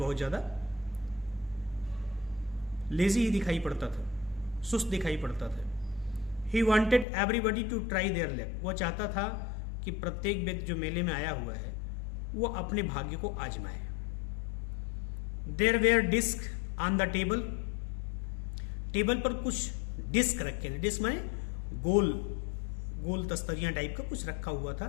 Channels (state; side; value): drops out; right; at 7.1 s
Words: ज्यादा लेजी ही दिखाई पड़ता था, सुस्त दिखाई पड़ता था। He wanted everybody to try their luck. वो चाहता था कि प्रत्येक व्यक्ति जो मेले में आया हुआ है वो अपने भाग्य को आजमाए। There were disc on the table. Table पर कुछ डिस्क रखे थे। डिस्क माने गोल गोल तस्तरियां टाइप का कुछ रखा हुआ